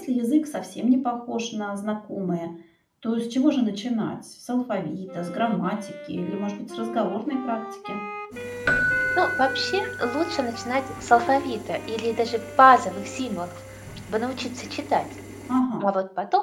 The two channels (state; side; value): identical; both; correlation 1.00